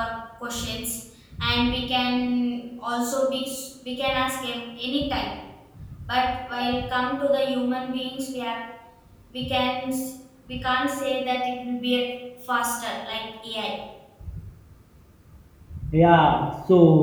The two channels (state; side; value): identical; both; correlation 1.00